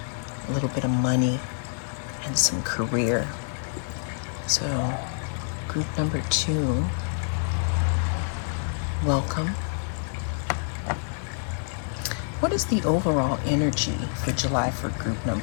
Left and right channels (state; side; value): silent; right; digital silence